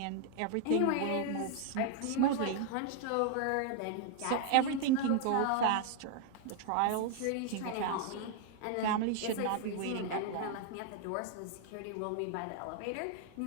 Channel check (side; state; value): both; different; correlation 0.00